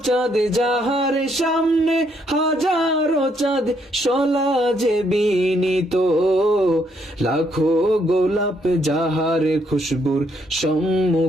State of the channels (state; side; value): normal; both; correlation 0.72